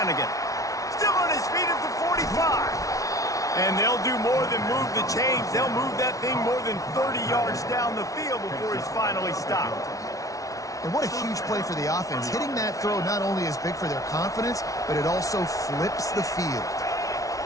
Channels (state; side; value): late; right; 0.17 ms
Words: Still on his feet at the 45. And they'll do more than move the chains. They'll move that thing more than 30 yards down the field before he's finally stopped. And what a huge play for the offense. Hitting that throw not only is big for their confidence, but it also flips the field.